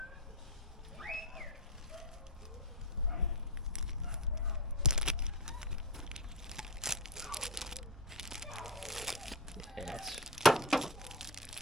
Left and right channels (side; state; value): both; normal; correlation 0.15